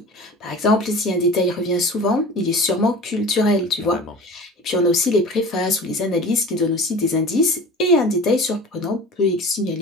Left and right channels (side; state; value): both; normal; correlation 0.38